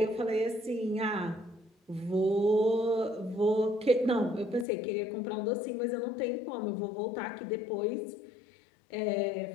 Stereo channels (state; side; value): drops out; right; at 4.7 s